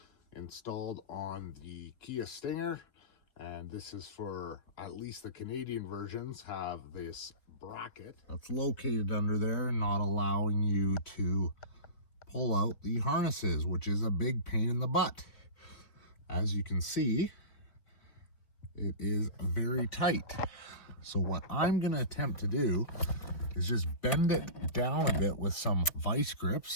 installed on the Kia Stinger. And this is for, at least the Canadian versions, have this bracket that's located under there, not allowing you to pull out the harnesses, which is a big pain in the butt. As you can see, it is very tight. So what I'm going to attempt to do is just bend it down a bit with some vice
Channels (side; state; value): right; late; 3.9 ms